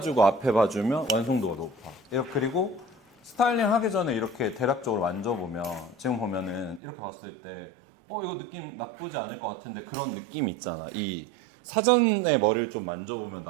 앞에 봐주면 완성도가 높아. 그리고 스타일링 하기 전에 이렇게 대략적으로 만져보면 지금 보면은 이렇게 봤을 때 이거 느낌 나쁘지 않을 것 같은데 그런 느낌이 있잖아. 이 사전에 머리를 좀 만져보면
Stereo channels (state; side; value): drops out; left; at 6.8 s